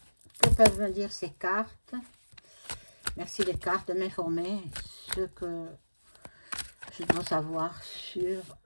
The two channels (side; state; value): both; inverted; correlation -1.00